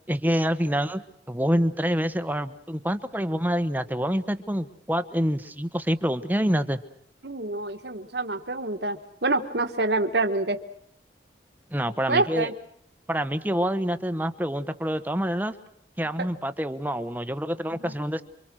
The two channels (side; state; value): both; normal; correlation 0.60